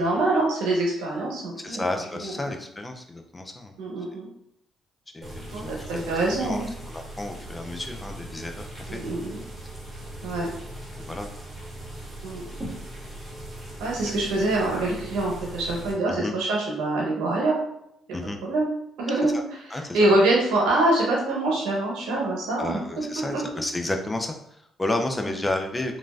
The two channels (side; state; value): both; normal; correlation 0.69